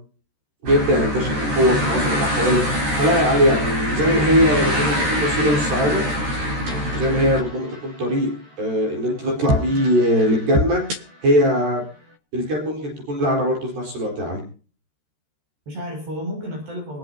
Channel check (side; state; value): left; late; 13 ms